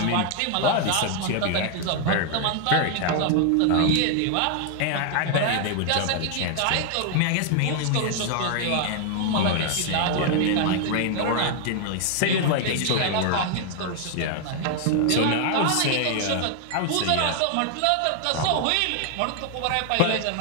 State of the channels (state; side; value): different; both; correlation 0.00